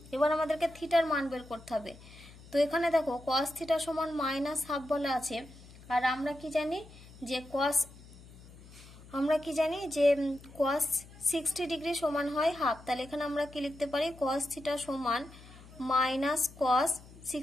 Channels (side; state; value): left; noise; hum, 20 dB below the sound